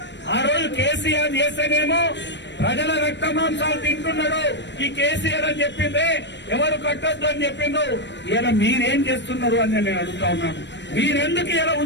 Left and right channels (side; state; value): right; late; 0.52 ms